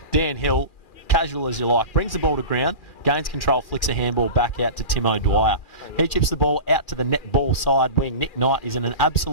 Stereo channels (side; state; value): right; late; 2.4 ms